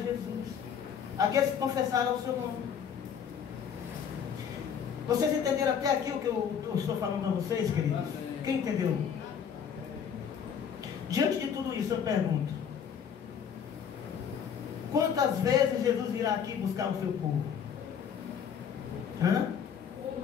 aqueles que confessaram o seu nome. Vocês entenderam até aqui o que eu estou falando a vocês, queridos? Quem entendeu? Diante de tudo isso, eu pergunto: quantas vezes Jesus virá aqui buscar o seu povo? Hã?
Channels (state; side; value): quieter; right; 7.7 dB